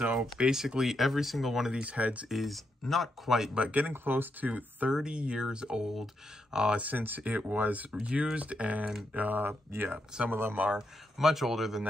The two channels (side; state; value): both; normal; correlation 0.81